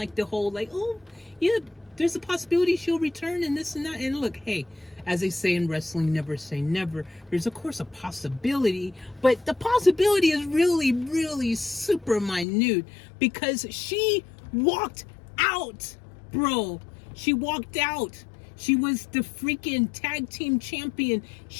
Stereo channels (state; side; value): drops out; right; at 12.5 s